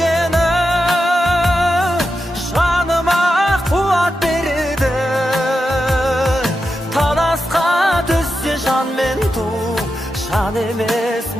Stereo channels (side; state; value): both; normal; correlation 0.88